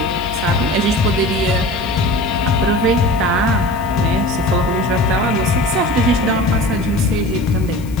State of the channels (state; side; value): noise; left; hiss, 22 dB below the sound